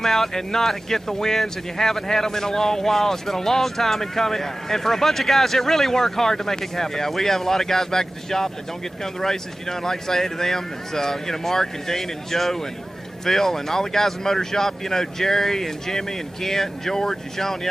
out and not get the wins, and you haven't had them in a long while. It's been a long time in coming, and for a bunch of guys that really work hard to make it happen. Yeah, we have a lot of guys back at the shop that don't get to come to the races. You know, and like I say to them, it's Mark and Dean and Joe and Phil and all the guys in the motor shop. You know, Jerry and Jimmy and Kent and George and Sean.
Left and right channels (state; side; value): normal; both; correlation 0.96